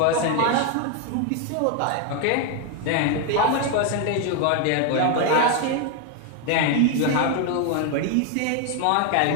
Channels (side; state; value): both; different; correlation 0.01